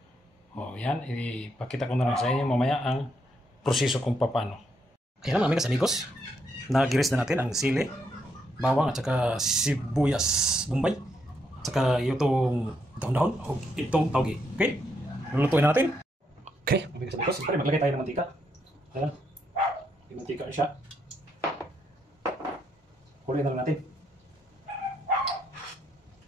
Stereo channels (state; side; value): normal; both; correlation 0.77